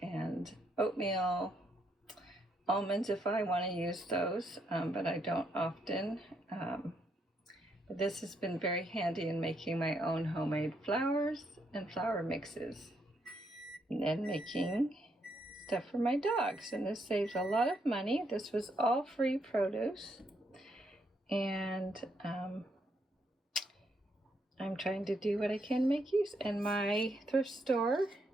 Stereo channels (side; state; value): both; normal; correlation 0.76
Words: and oatmeal, almonds if I want to use those, but I don't often. But this has been very handy in making my own homemade flours and flour mixes, and then making stuff for my dogs. And this saves a lot of money. This was all free produce, and I'm trying to do what I can make use. And my thrift store